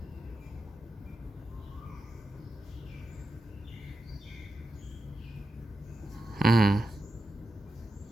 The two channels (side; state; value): both; normal; correlation 0.89